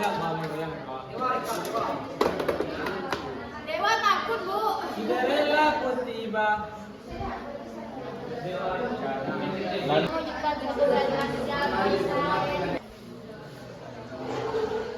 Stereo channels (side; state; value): both; identical; correlation 1.00